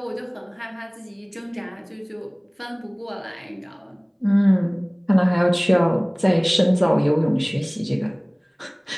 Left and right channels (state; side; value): identical; both; correlation 1.00